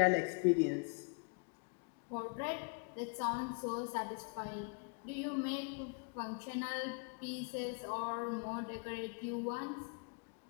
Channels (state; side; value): quieter; right; 36.8 dB